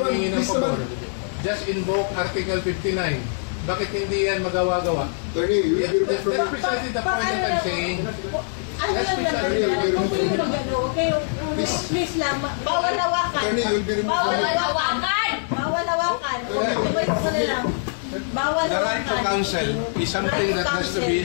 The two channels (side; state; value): right; silent; digital silence